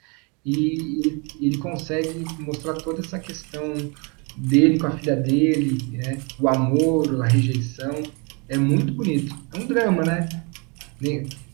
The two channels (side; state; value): left; quieter; 31.9 dB